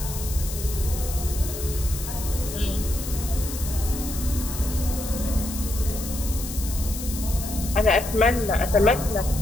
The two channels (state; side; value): noise; left; hiss, 9 dB below the sound